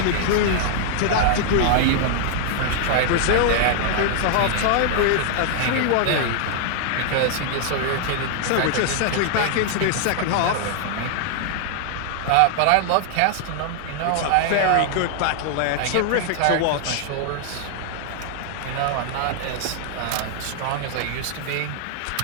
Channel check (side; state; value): both; different; correlation 0.00